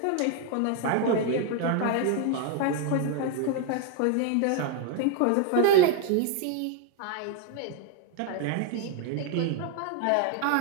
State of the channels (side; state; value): both; different; correlation 0.01